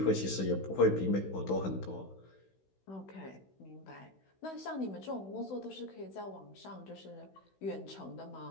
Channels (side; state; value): right; late; 16 ms